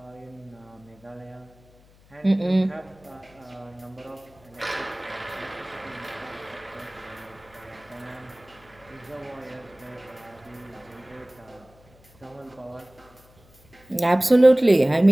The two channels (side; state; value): left; noise; hum, 27 dB below the sound